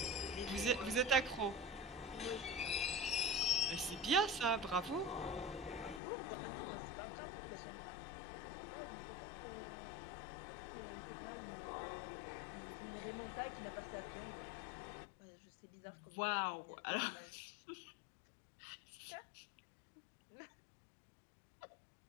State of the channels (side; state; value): right; drops out; at 6.0 s